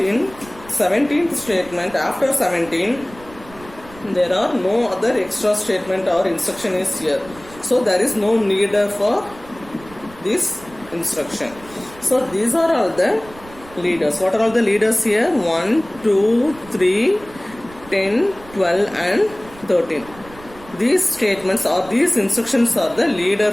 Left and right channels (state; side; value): noise; right; rumble, 20 dB below the sound